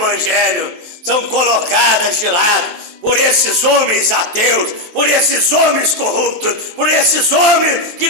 são colocadas de lado por esses homens ateus, por esses homens corruptos, por esses homens que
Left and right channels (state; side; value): late; left; 23 ms